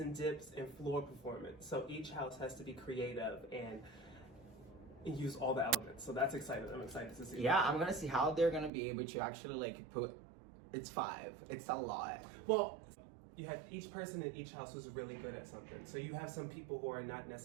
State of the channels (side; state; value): left; drops out; at 8.7 s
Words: dips, and floor performance. So each house has to be creative and use all the elements. So that's exciting. I'm excited to see. Yeah, I'm gonna see how they're gonna be able to actually like put, it's 5. It's a lot. Well, you have each person in each house who's really good at something. So you have some people who are not